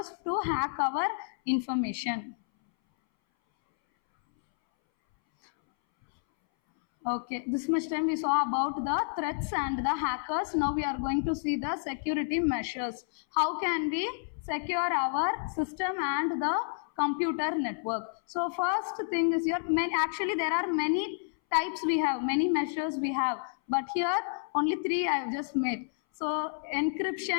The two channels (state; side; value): silent; right; 58 dB below the other